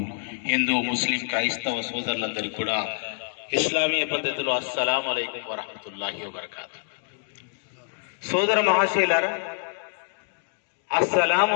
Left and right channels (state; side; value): silent; right; digital silence